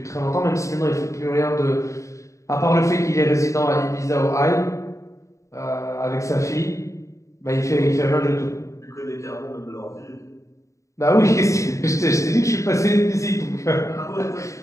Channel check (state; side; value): late; right; 0.15 ms